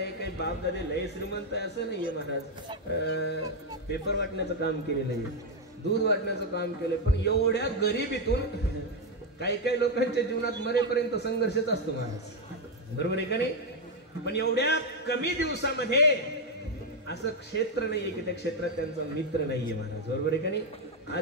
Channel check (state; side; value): normal; both; correlation 0.03